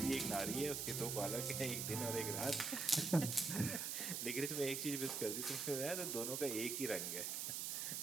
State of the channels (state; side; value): noise; right; hiss, 1 dB below the sound